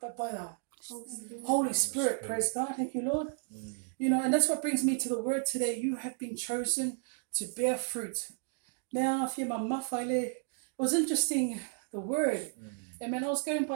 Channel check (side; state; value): left; silent; 56 dB below the other